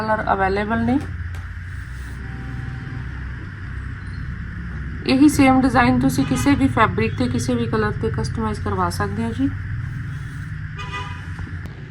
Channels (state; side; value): identical; both; correlation 1.00